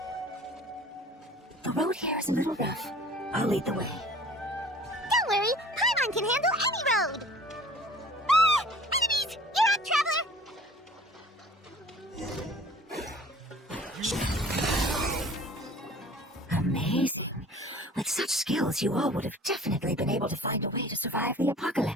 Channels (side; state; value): both; normal; correlation 0.47